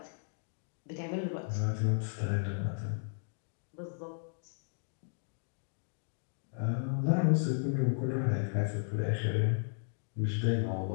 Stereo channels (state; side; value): silent; right; digital silence